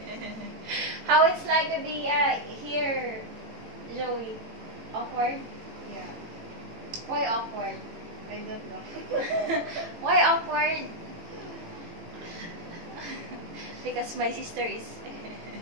How it's like to be here, Joey? Awkward? Yeah, Why awkward? I don't know. Why awkward? Because my sister is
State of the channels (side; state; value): left; late; 18 ms